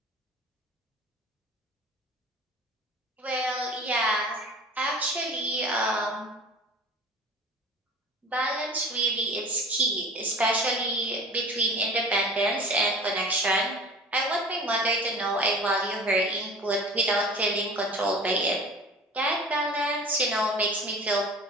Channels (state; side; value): normal; both; correlation 0.41